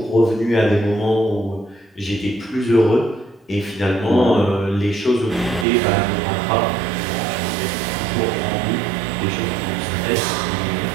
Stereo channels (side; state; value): left; drops out; at 5.7 s